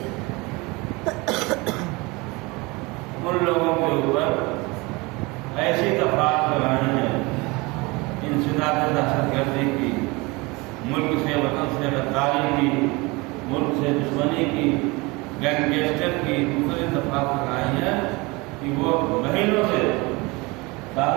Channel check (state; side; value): quieter; left; 24.9 dB